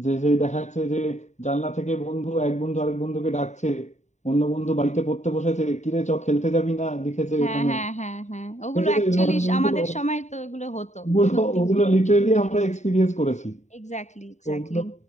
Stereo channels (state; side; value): late; right; 0.34 ms